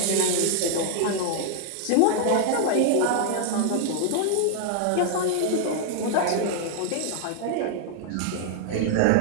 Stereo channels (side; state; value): both; different; correlation 0.00